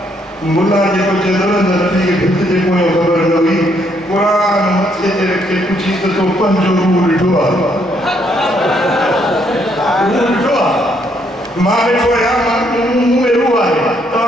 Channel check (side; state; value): both; normal; correlation 0.71